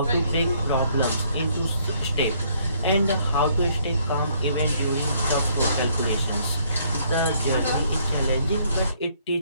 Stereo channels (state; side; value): inverted; both; correlation -0.67